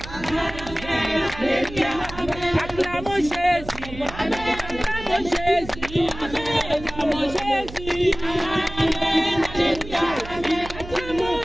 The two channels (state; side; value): noise; right; hum, 13 dB below the sound